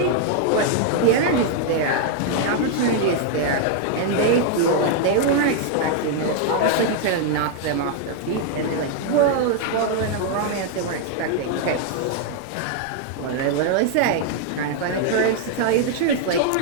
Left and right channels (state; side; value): different; both; correlation 0.00